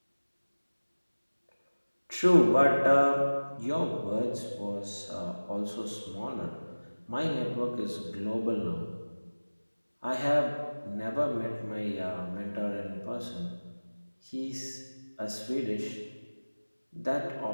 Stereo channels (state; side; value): inverted; both; correlation -1.00